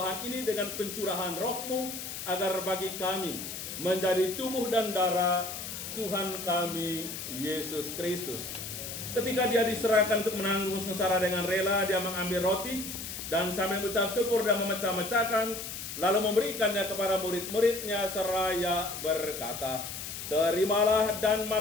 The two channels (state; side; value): noise; left; hiss, 7 dB below the sound